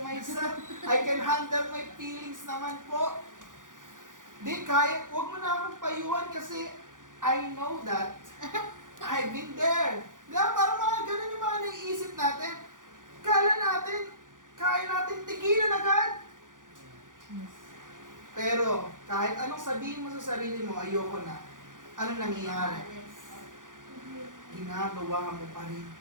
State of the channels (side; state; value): left; late; 0.88 ms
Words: myself. I can handle my feelings naman po. Di, kaya, huwag mo na akong payuhan kasi I know that. I've been there. Diba, parang mga ganun yung mga naiisip natin. Kala natin, kaya natin tigilan agad. Pero, kahit anong sabihin mo sa sarili mo, ayoko na. Anong nangyayari? Yes. Ginagawa mo pa rin.